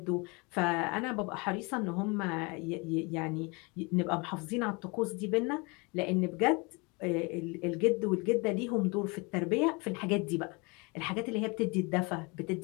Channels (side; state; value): right; quieter; 28.9 dB